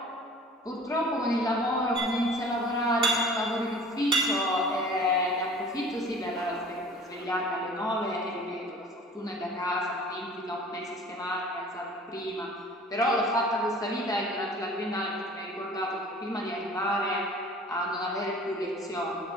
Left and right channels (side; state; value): both; normal; correlation 0.46